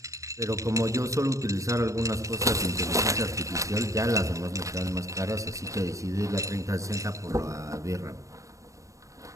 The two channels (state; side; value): late; left; 0.16 ms